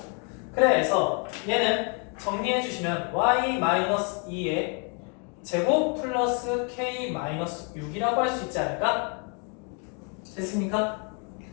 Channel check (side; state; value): right; quieter; 37.7 dB